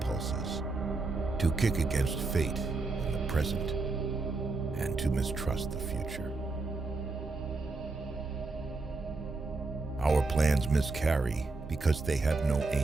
to kick against fate in the present, and to mistrust the future. Our plans miscarry because they have no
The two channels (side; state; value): left; quieter; 3.6 dB